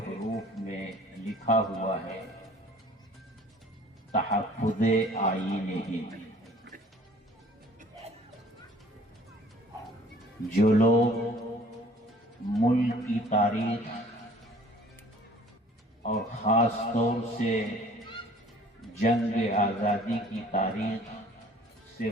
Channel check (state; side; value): normal; both; correlation 0.52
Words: میں لکھا ہوا ہے تحفظ آئین ہند۔ جو لوگ ملک کی تاریخ اور خاص طور سے جنگ آزادی کی تاریخ سے